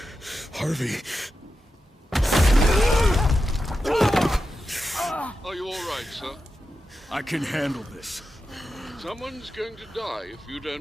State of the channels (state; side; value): normal; both; correlation 0.90